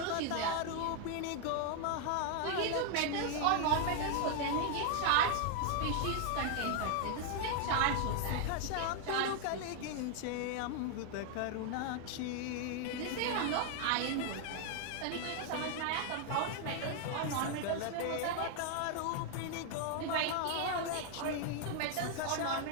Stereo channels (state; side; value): different; both; correlation 0.00